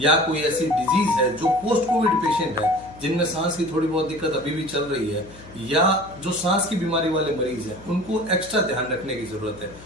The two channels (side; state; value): left; noise; hum, 20 dB below the sound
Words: कोई ऐसी डिजीज है जो पोस्ट कोविड पेशेंट है, जिनमें सांस की थोड़ी बहुत दिक्कत अभी भी चल रही है, या जो सांस की बीमारी वाले मरीज हैं, उनको एक्स्ट्रा ध्यान रखने की जरूरत है।